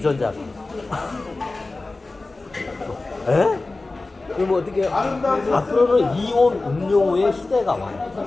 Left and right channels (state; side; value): quieter; right; 3.3 dB